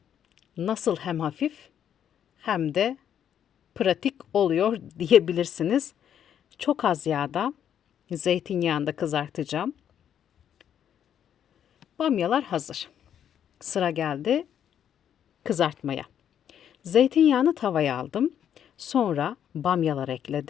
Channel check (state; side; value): quieter; right; 9.4 dB